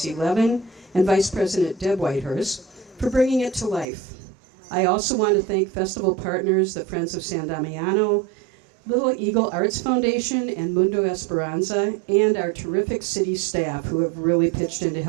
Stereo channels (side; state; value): left; drops out; at 3.9 s